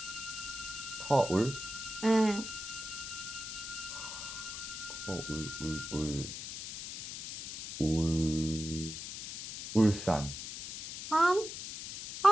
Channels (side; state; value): left; noise; hiss, 8 dB below the sound